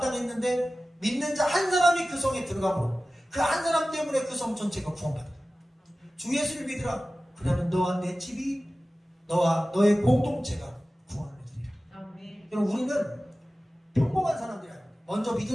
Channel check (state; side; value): normal; both; correlation 0.96